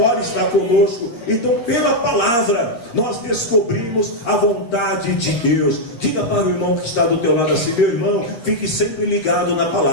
está conosco. Então, pela palavra, nós descobrimos a vontade de Deus. Diga para o irmão que está do teu lado assim: meu irmão, fique sempre ligado na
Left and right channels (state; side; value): late; right; 8.6 ms